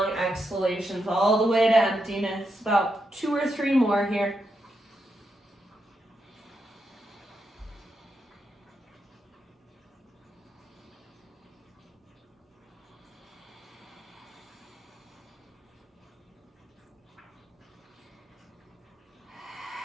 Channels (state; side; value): normal; both; correlation 0.83